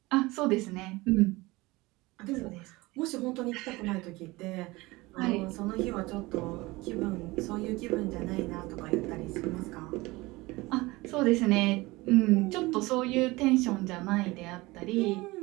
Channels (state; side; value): quieter; left; 21.6 dB